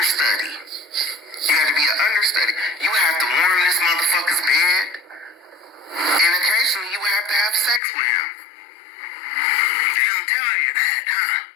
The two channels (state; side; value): drops out; right; at 7.8 s